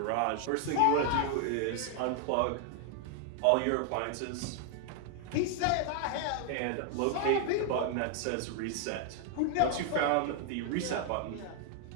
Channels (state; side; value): different; both; correlation 0.00